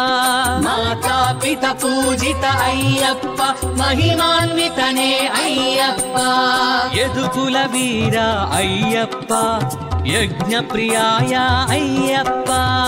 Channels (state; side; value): identical; both; correlation 1.00